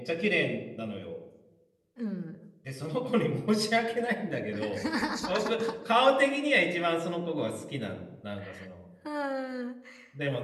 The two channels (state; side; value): identical; both; correlation 1.00